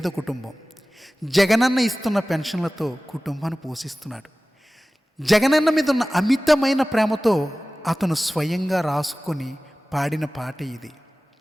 కుటుంబం. జగనన్న ఇస్తున్న పెన్షన్లతో కుటుంబాన్ని పోషిస్తున్నాడు. జగనన్న మీద ఉన్న అమితమైన ప్రేమతో అతను స్వయంగా రాసుకొని పాడిన పాట ఇది.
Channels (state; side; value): normal; both; correlation 0.97